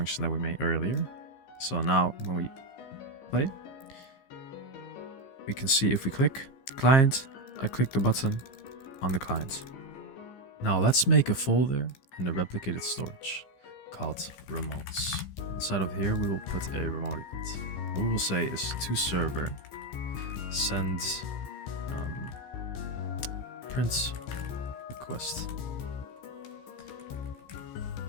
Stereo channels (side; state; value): right; late; 15 ms